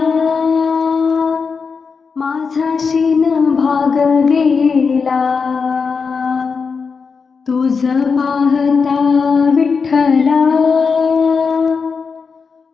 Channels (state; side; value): quieter; right; 5.3 dB